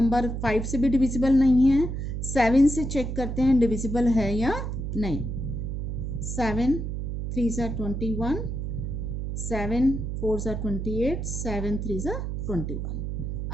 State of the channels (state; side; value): noise; right; hum, 4 dB below the sound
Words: 5 से भी divisible नहीं है. 7 से check करते हैं divisible है या नहीं. 7 3s are 21, 7 4s are 28, 7 3s are 21.